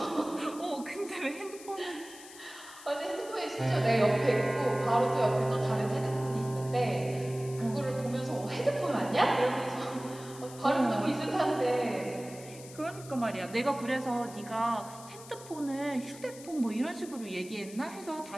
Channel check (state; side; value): noise; left; hiss, 17 dB below the sound